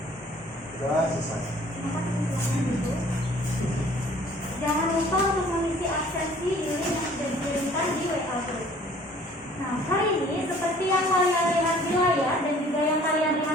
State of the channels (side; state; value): both; normal; correlation 0.54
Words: Doa selesai. Jangan lupa untuk mengisi absensi di link yang sudah dikirimkan di WA Group. Nah, hari ini seperti yang kalian lihat di layar dan juga yang kalian